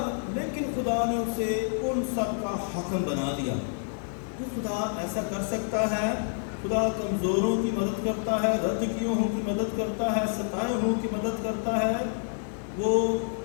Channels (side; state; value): right; silent; 59 dB below the other